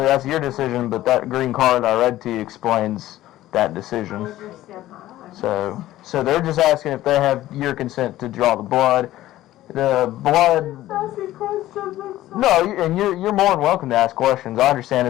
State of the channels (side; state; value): right; quieter; 14.9 dB